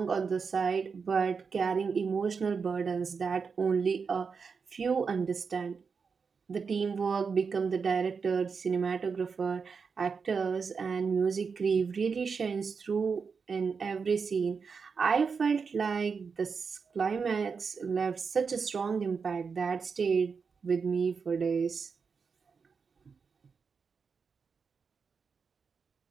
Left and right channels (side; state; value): left; quieter; 5.5 dB